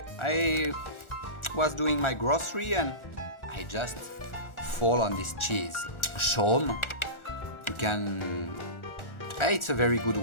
I was doing my grocery and I just fall on this cheese. Chaumes. It's a very good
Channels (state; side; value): late; right; 1.4 ms